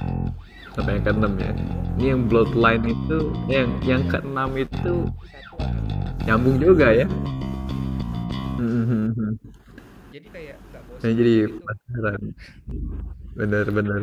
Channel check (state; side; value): identical; both; correlation 1.00